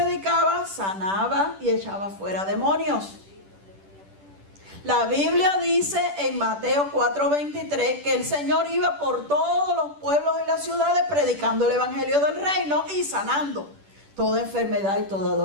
sanaba y echaba fuera demonios. La Biblia dice en Mateo 4:23 que el Señor iba por todos los pueblos y las ciudades predicando el evangelio del reino y sanando toda enfermedad y toda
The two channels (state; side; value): late; left; 10 ms